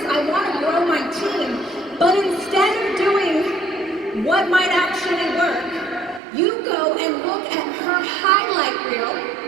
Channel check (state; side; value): drops out; left; at 6.2 s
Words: I want to grow my team. But instead of doing what might actually work, you go and look at her highlight